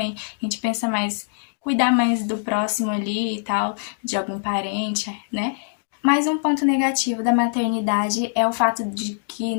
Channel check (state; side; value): silent; right; digital silence